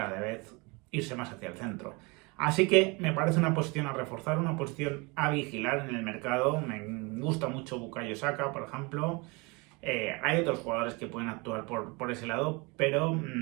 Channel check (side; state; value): left; quieter; 27.6 dB